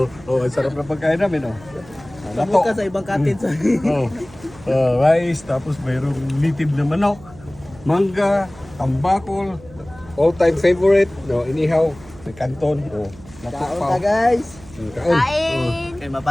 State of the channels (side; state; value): right; noise; hum, 21 dB below the sound